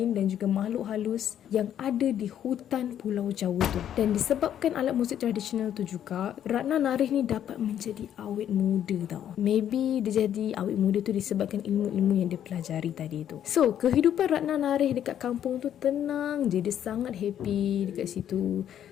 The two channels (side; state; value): right; quieter; 10.2 dB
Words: dan juga makhluk halus yang ada di hutan Pulau Jawa tu. Dan disebabkan alat muzik tradisional tu juga, Ratna Narih ni dapat menjadi awet muda tau. Maybe dia jadi awet muda tu disebabkan ilmu-ilmu yang dia pelajari tadi tu. So, kehidupan Ratna Narih dekat kampung tu tenang je. Dia sangat happy dekat situ.